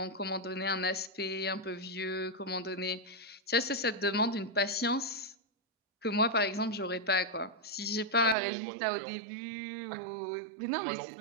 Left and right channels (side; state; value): left; drops out; at 8.3 s